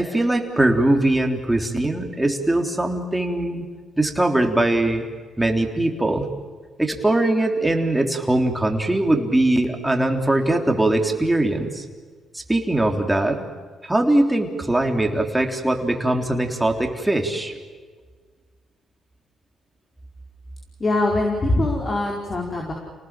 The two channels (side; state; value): both; normal; correlation 0.92